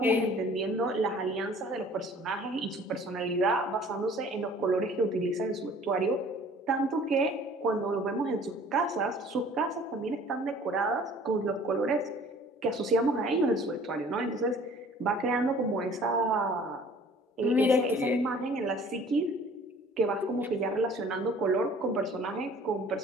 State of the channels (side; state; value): both; normal; correlation 0.51